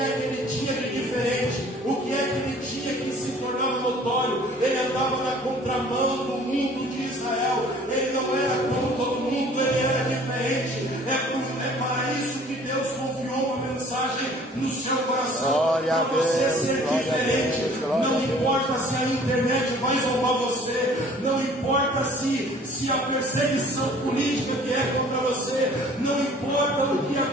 que ele tinha de diferente? O que é que ele tinha que se tornava notório? Ele andava na contramão do mundo de Israel, ele não era como todo mundo, ele era diferente. É para isso que Deus confiou uma mensagem no seu coração, para você ser diferente. Não importa se a internet vai zombar você, não importa se a perseguição política que é contra você, não importa o que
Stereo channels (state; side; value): normal; both; correlation 0.52